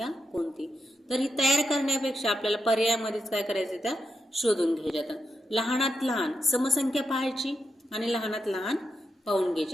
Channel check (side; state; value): both; normal; correlation 0.85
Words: कोणती? तर ही तयार करण्यापेक्षा आपल्याला पर्यायामध्येच काय करायचं त्या शोधून घ्यायच्या. लहानात लहान समसंख्या पाहायची आणि लहानात लहान पाहून